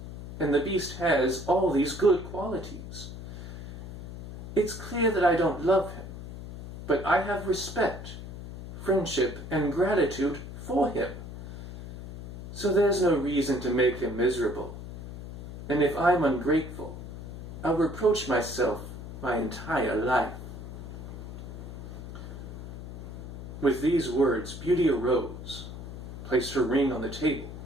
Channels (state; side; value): noise; left; hum, 11 dB below the sound